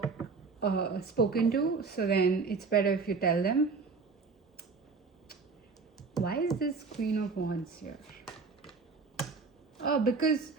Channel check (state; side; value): quieter; left; 4.6 dB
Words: spoken to, so then it's better if you tell them. Why is this Queen of Wands here? Oh, because